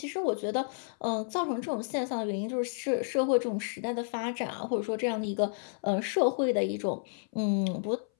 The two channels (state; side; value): silent; right; 57 dB below the other